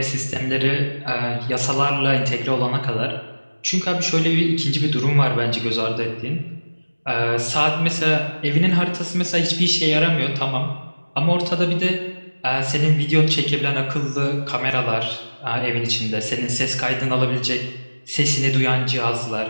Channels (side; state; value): both; inverted; correlation -1.00